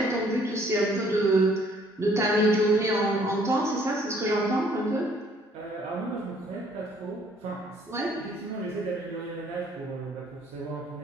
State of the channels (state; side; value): normal; both; correlation 0.61